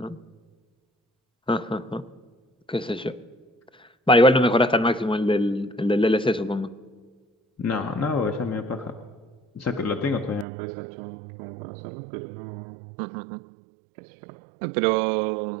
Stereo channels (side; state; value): left; drops out; at 10.5 s